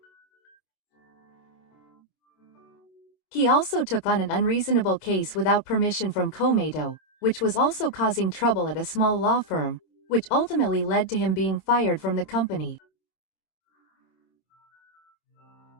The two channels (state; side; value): late; right; 26 ms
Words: He also took on an unreasonable case without permission from Komeito, which was also causing trouble at a small law firm, which ultimately led to him being fired from the company.